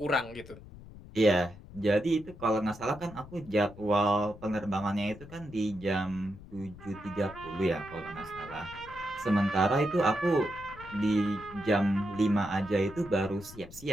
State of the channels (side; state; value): left; noise; rumble, 17 dB below the sound